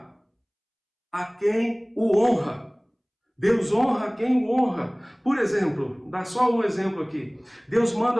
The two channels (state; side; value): identical; both; correlation 1.00